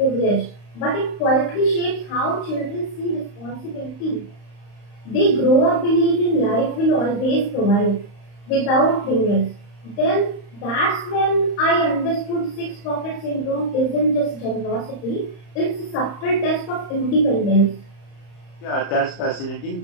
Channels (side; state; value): right; late; 35 ms